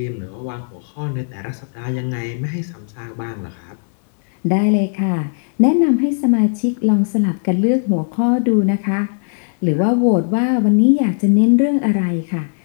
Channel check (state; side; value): silent; right; digital silence